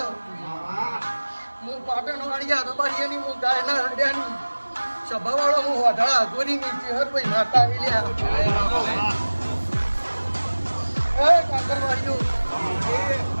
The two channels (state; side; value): inverted; both; correlation -1.00